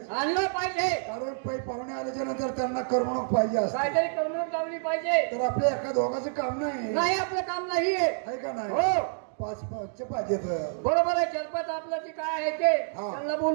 आणला पाहिजे. कारण पै पाहुणे आल्याच्या नंतर त्यांना करमणूक पाहिजे असते. काहीतरी करमणूक लावली पाहिजे. तर आपल्या एका दोघांचं काम नाही आपलं काम नाही आहे का नाही. हो पाच पाचचे पाहिजे. बरोबर आहे. चलपात आपलं जे काय आहे ते त्यांना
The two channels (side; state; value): left; silent; digital silence